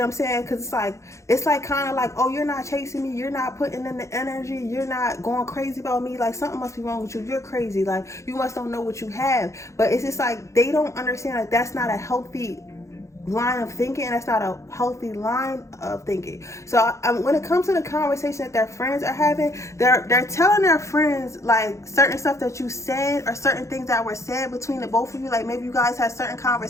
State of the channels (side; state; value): right; late; 0.14 ms